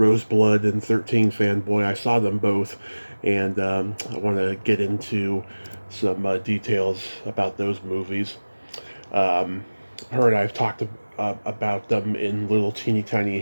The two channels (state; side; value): inverted; both; correlation -1.00